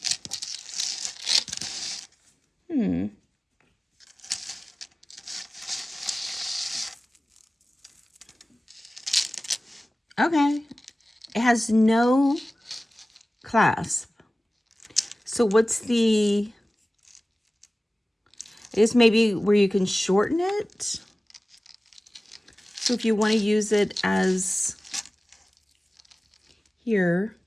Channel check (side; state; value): both; normal; correlation 0.97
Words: Okay. It has no clasp. So what's the, I guess maybe where you can shorten it? So if you want to use it as here,